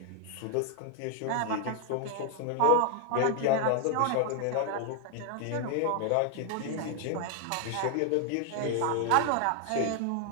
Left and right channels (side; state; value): both; different; correlation 0.00